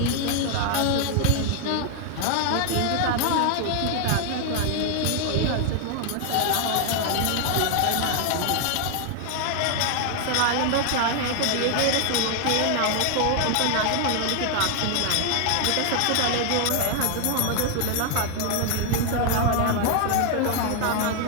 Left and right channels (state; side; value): different; both; correlation 0.00